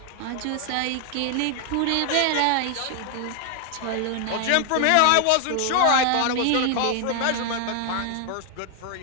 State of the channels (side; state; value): both; different; correlation 0.00